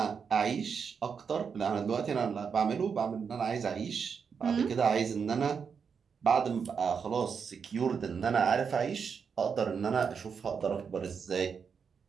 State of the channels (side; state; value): left; quieter; 6.3 dB